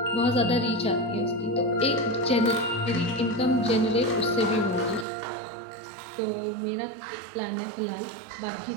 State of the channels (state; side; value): drops out; left; at 5.1 s